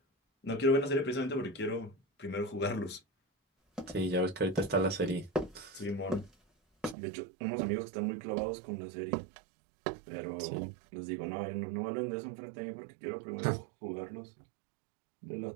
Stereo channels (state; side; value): drops out; left; at 7.0 s